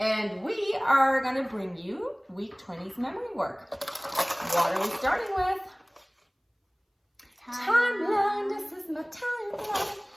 we are going to bring you Week 20's memory work. What are we starting with? Timeline. This is my timeline.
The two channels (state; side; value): identical; both; correlation 1.00